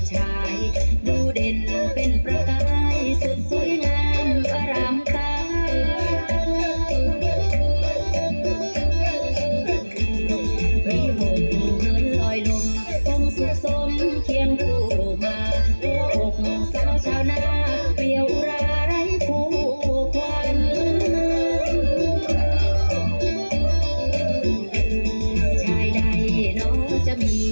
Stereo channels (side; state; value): both; inverted; correlation -1.00